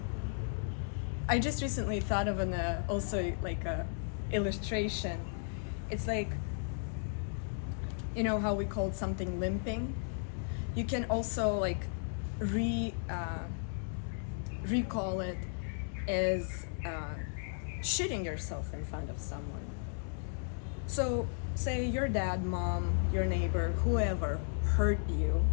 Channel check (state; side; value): silent; right; digital silence